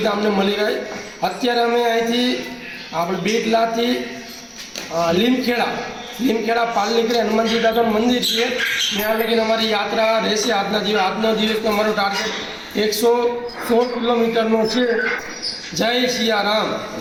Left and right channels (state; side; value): identical; both; correlation 1.00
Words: અમને મળી રહે. અત્યારે અમે અહીંથી આપણે બેટલાથી લીમખેડા પાલ નીકળે હનુમાનજી દાદાનું મંદિર છે. ત્યાં લગીને અમારી યાત્રા રહેશે. આજનો દિવસ અમારો ટાર્ગેટ 116 કિલોમીટરનો છે. જય સિયારામ.